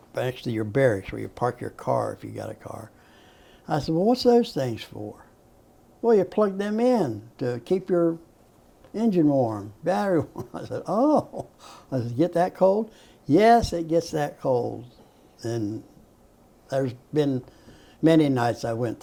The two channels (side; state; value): both; identical; correlation 1.00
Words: next to your barracks where you park your car if you got a car. I said, well, what's those things for? Well, you plug them in to keep your engine warm, battery warm. I said, oh. I said, get that cold? Yes, it gets that cold. And there's been many nights I went